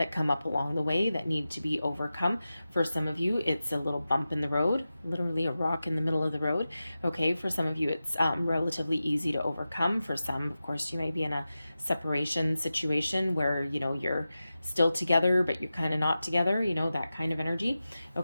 come up along the way that need to be overcome. For some of you, it's a little bump in the road, literally a rock in the middle of the road. Okay, for some of you, it's relatively easy to overcome. For some, of course, you may be in a separation situation where, you're still together, but you're kind of not together, that kind of energy.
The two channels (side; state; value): both; inverted; correlation -0.94